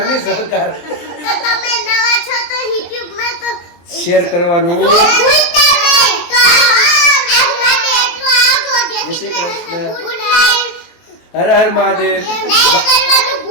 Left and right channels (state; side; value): late; right; 23 ms